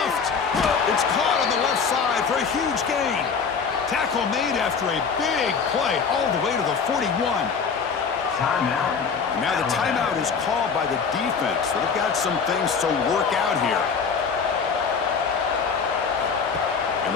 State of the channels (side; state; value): right; quieter; 5.8 dB